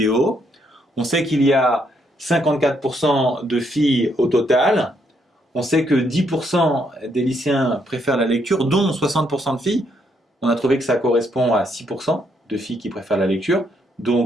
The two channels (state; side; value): normal; both; correlation 0.74